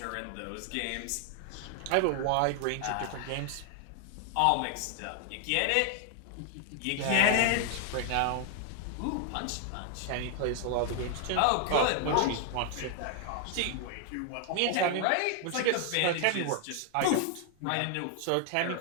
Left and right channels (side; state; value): both; different; correlation 0.00